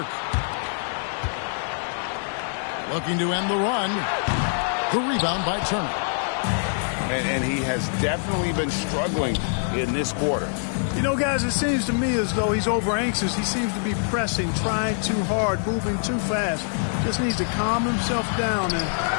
Looking to end the run. The rebound by Turner. And he has definitely been struggling in this quarter. You know, guys, it seems to me as though he's over anxious. He seems to be pressing, trying too hard, moving too fast. Just needs to calm himself down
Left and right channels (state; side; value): silent; right; digital silence